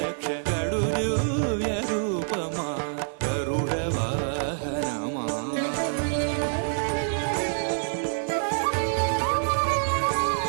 కడు దివ్య రూపమా గరుడ వాహనమా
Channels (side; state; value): left; silent; digital silence